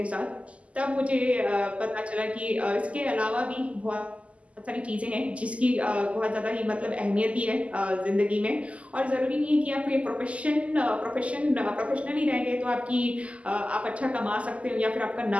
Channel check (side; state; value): left; late; 0.063 ms